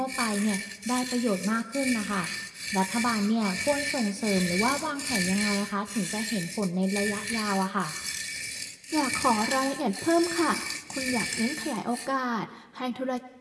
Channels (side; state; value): both; identical; correlation 1.00